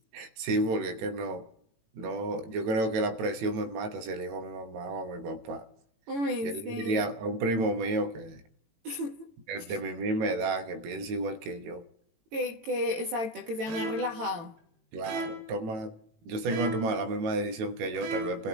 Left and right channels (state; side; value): late; left; 18 ms